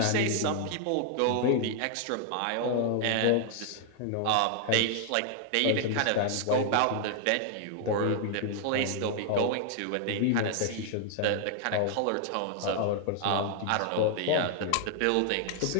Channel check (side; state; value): both; different; correlation 0.00